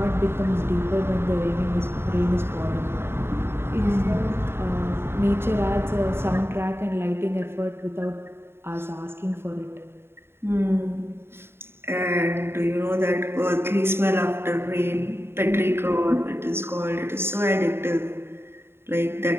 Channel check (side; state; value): left; late; 0.11 ms